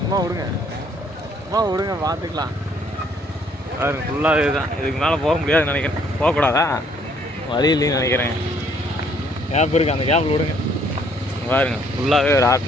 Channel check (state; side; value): normal; both; correlation 0.64